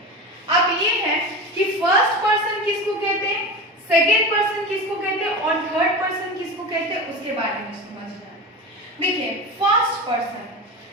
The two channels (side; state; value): both; normal; correlation 0.27